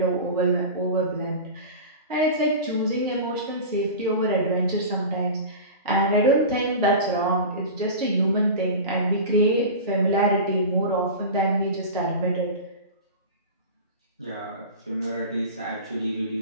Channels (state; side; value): inverted; both; correlation -0.30